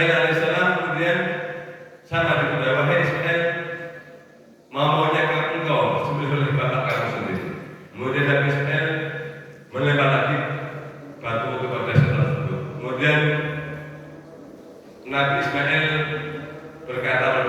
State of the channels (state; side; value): identical; both; correlation 1.00